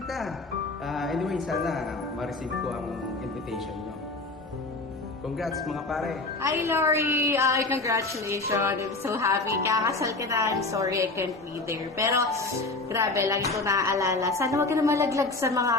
Anyway, sana ma-receive ko ang invitation nyo. Congrats mga pare. Hi, Lori! Congratulations! I'm so happy. Kakasal ka na. I'm sorry I can't be there. Pero, grabe, lagi ko naaalala. Sana huwag ka na malaglag sa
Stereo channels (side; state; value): right; quieter; 3.3 dB